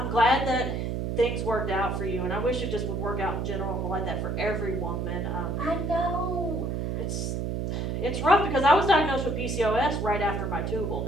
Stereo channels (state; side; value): noise; right; hum, 1 dB below the sound